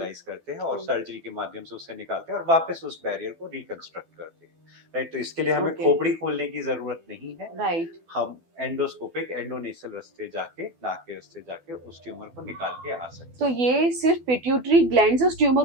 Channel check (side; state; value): left; late; 12 ms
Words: करते हैं और सर्जरी के माध्यम से उसे निकालते हैं और वापस उस बैरियर को रिकंस्ट्रक्ट करते हैं। राइट, तो इसके लिए हमें खोपड़ी खोलने की जरूरत नहीं है। राइट, हम एंडोस्कोपिक एंडोनेसल रास्ते जाके, नाक के रास्ते जाके उस ट्यूमर को निकाल के आ सकते हैं। तो ये सिर्फ पिट्यूटरी ग्लैंड से उस ट्यूमर